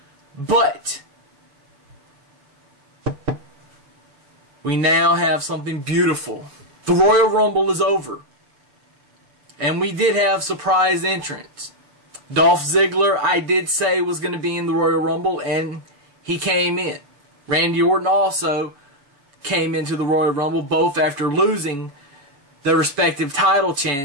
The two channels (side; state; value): left; late; 7.0 ms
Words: But we now have something beautiful. The Royal Rumble is over. And we did have surprise entrants. Dolph Ziggler, I did say, was going to be in the Royal Rumble, and he came in. Randy Orton also came into the Royal Rumble, both after losing their respective title